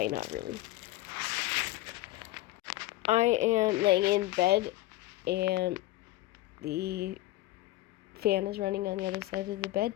not really. I am laying in bed and the fan is running on the other side of the bed.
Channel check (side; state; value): right; quieter; 17.6 dB